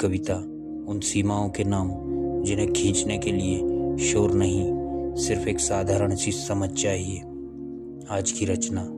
उन सीमाओं के नाम जिन्हें खींचने के लिए शोर नहीं, सिर्फ एक साधारण सी समझ चाहिए। आज की रचना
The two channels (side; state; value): both; identical; correlation 1.00